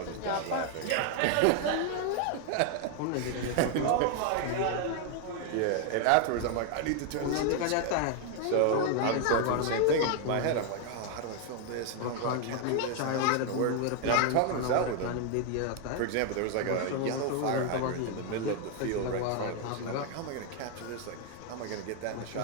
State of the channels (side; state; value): both; different; correlation 0.00